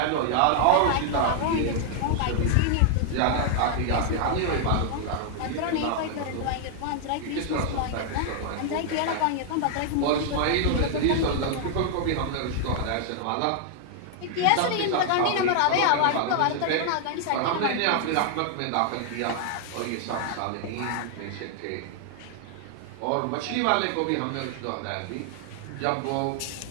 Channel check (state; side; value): different; both; correlation 0.00